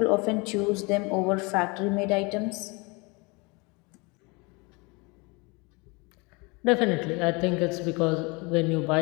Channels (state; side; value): quieter; right; 28.0 dB